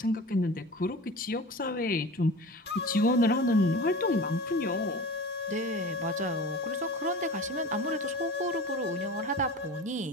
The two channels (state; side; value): normal; both; correlation 0.35